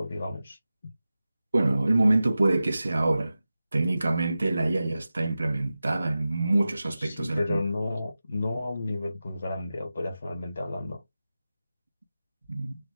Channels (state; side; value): inverted; both; correlation -0.94